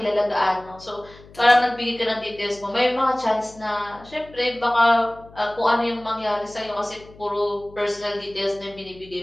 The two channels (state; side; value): noise; left; hum, 22 dB below the sound